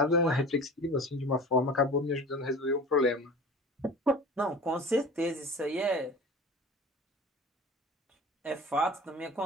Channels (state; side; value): normal; both; correlation 0.38